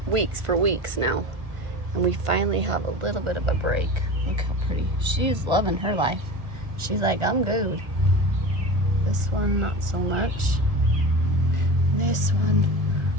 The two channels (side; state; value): left; late; 1.4 ms